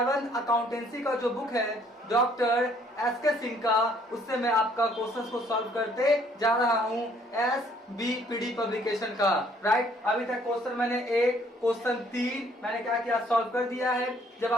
अकाउंटेंसी का जो बुक है डॉक्टर एस के सिंह का, उससे मैं आपका क्वेश्चंस को सॉल्व करते जा रहा हूं SBPD पब्लिकेशन का। राइट, अभी तक क्वेश्चन मैंने क्वेश्चन 3 मैंने क्या किया, सॉल्व कर दिया है। जब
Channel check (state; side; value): normal; both; correlation 0.62